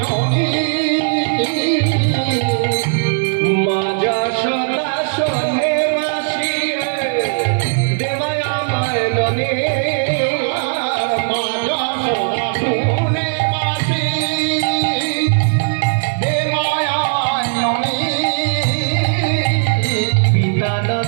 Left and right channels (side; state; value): left; silent; 57 dB below the other